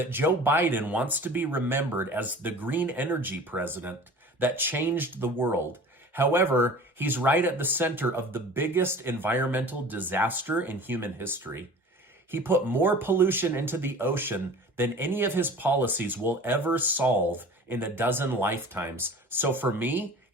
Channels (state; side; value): normal; both; correlation 0.41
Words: Joe Biden wants to be remembered as the green energy president that changed the world. However, he's right at the center of the biggest environmental disaster in human history. He put more pollution into the ocean than any of his policies will ever solve in a dozen lifetimes. So for me,